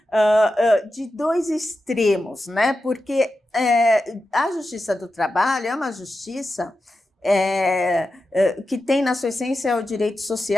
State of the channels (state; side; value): normal; both; correlation 0.91